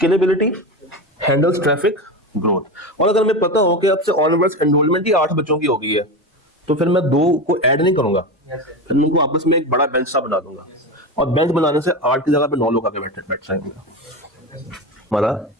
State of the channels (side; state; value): both; normal; correlation 0.21